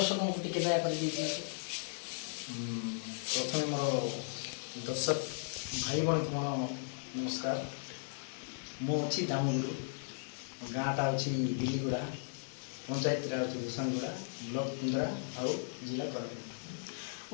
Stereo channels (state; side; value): silent; right; 54 dB below the other